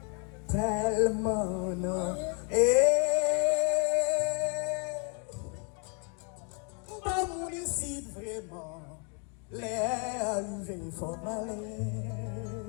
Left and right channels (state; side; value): quieter; right; 37.0 dB